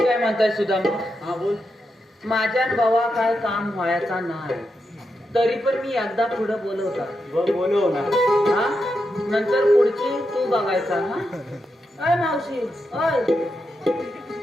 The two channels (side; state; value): both; normal; correlation 0.85